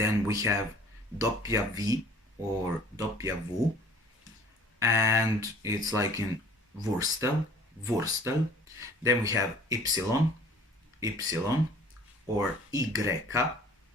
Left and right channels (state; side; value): normal; both; correlation 0.50